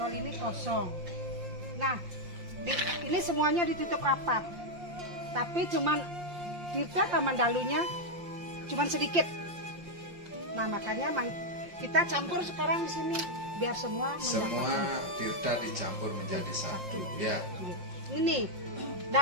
ini kosong. Nah, ini semuanya ditutup rapat. Tapi cuman Tirta Kamandalunya cuman sedikit. Nah, makanya kita campur sekarang di sini biar semua mendapatkan. Semua tirta dicampur menjadi satu. Ya. Ini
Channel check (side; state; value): left; late; 5.7 ms